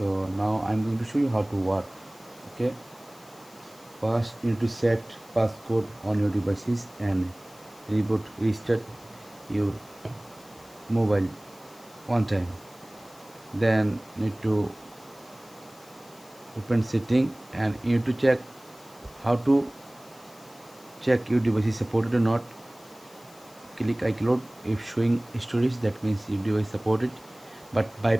now I am going to show you how to work. Okay, first you need to set passcode on your devices and restart your mobile one time. Then need to open setting and you need to check how to check your device is supported or not. Click iCloud. If showing storage, that means your device supported, but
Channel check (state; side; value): noise; left; hiss, 24 dB below the sound